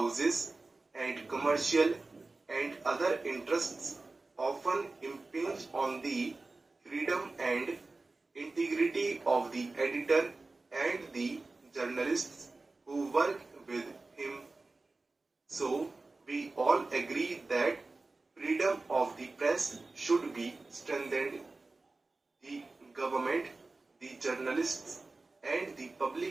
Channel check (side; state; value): left; quieter; 3.4 dB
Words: and commercial and other interests often impinge on the freedom and integrity of the editor and the journalists who work with him. So, we all agree that freedom of the press should be strengthened. The government, the journalists, and the